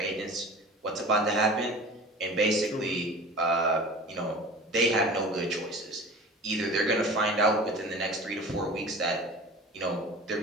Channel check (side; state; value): both; normal; correlation 0.39